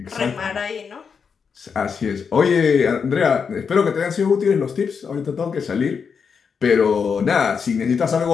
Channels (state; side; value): quieter; right; 6.1 dB